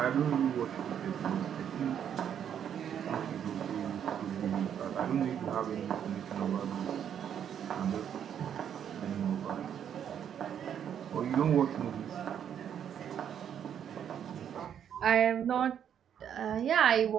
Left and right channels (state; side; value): quieter; left; 8.9 dB